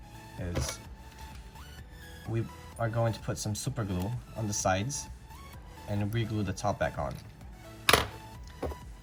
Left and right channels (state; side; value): identical; both; correlation 1.00